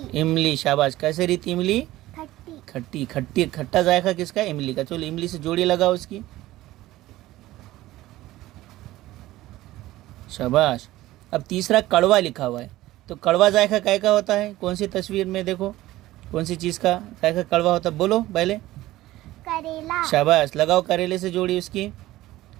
इमली। शाबाश। कैसे रीति इमली? खट्टी। खट्टी। खट्टी खट्टा जायका किसका है? इमली का। चलो इमली से जोड़ी लगाओ उसकी। शाबाश। अब तीसरा कड़वा लिखा हुआ है। तो कड़वा जायका काय का होता है? कौन सी तस्वीर में देखो, कौन सी चीज़ का जायका कड़वा होता है? बोलो पहले। करेला। शाबाश। लगाओ करेले से जोड़ी उसकी,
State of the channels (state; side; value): quieter; left; 16.4 dB